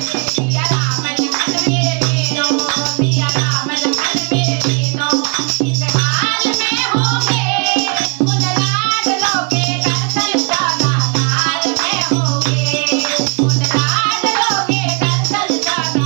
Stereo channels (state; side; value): quieter; left; 35.8 dB